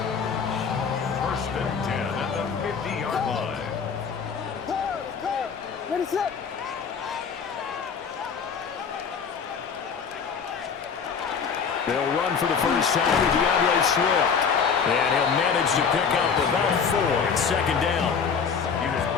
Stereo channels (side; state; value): right; quieter; 6.3 dB